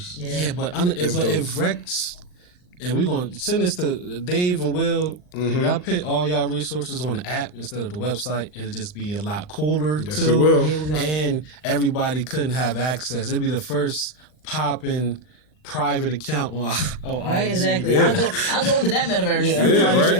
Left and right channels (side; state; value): right; late; 39 ms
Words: Yeah, but if Rec's And we're going to send this to Dave and Will. If y'all put all y'all resources on the app instead of the website, it'll just be a lot cooler, Yes, too. it will. And everybody couldn't have access. It'd be the first popping private account on Right, IG. exactly. Yeah. I'll go into that metaverse. Yeah,